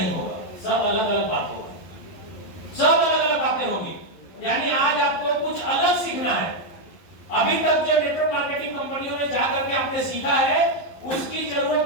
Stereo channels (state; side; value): late; right; 11 ms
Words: होगा, सब अलग अलग बात होगी, सब अलग अलग बातें होगी। यानी आज आपको कुछ अलग सीखना है। अभी तक जो नेटवर्क मार्केटिंग कंपनियों में जाकर के आपने सीखा है उसकी